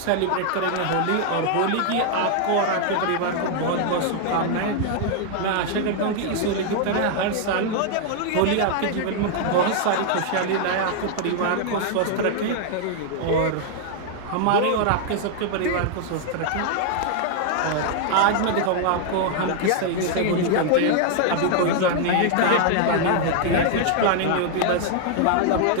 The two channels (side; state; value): both; different; correlation 0.00